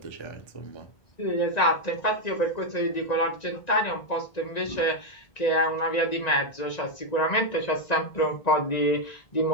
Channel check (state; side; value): late; right; 1.9 ms